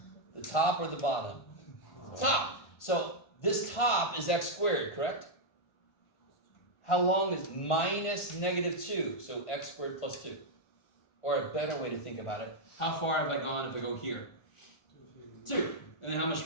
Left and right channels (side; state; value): right; late; 1.5 ms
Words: The top or the bottom? Top. So this top is x squared, correct? How long is minus -2? So x squared plus 2. Or a better way to think about it, how far have I gone if I go here? 2. And then how much